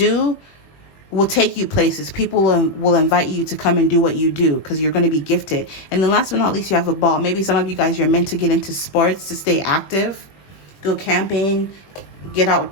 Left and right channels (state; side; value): late; right; 21 ms